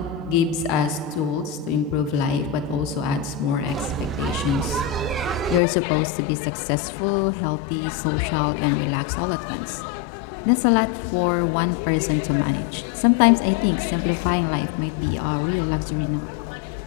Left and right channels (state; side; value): drops out; right; at 5.6 s